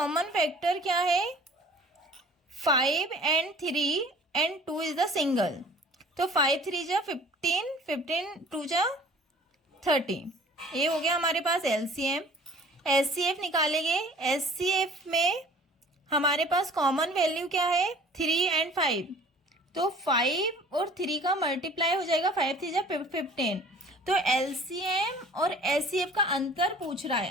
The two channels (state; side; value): normal; both; correlation 0.49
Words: फैक्टर क्या है। 5 and 3 and 2 is the single, तो 5 3 जा 15, 15 2 जा 30। ये हो गया हमारे पास एलसीएम। एचसीएफ निकालेंगे। एचसीएफ में हमारे पास कॉमन वैल्यू क्या है? 3 एंड 5, तो 5 और 3 का मल्टीप्लाई हो जाएगा, 5 3 जा 15। तो एलसीएम और एचसीएफ का अंतर पूछ रहा है,